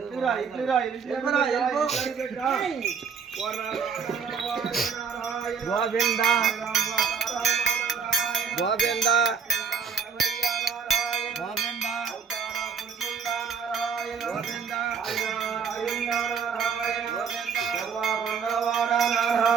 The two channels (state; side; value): quieter; left; 6.4 dB